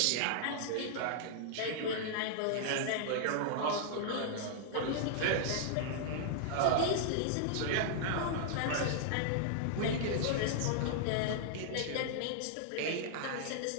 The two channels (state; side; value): different; both; correlation -0.01